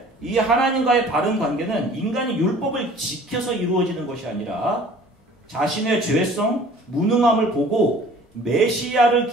이 하나님과의 바른 관계는 인간이 율법을 지켜서 이루어지는 것이 아니라 자신의 죄성, 무능함을 보고 메시아를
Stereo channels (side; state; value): both; normal; correlation 0.50